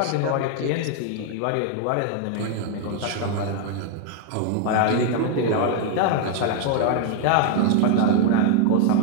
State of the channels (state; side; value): different; both; correlation 0.00